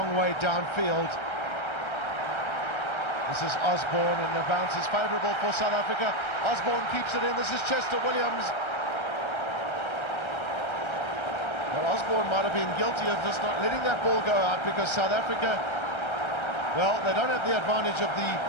way downfield. This is Osborne, and the bounce is favourable for South Africa. Osborne keeps it in. This is Chester Williams. Well, Osborne might have been guilty of just not letting that ball go out, because South Africa, well, they don't have the advantage of the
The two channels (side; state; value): right; late; 1.3 ms